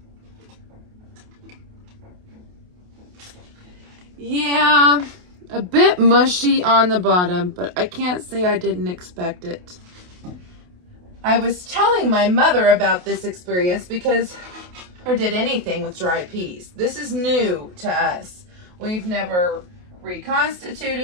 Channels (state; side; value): late; left; 28 ms